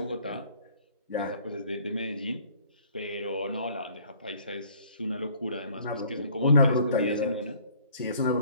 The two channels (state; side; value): inverted; both; correlation -0.57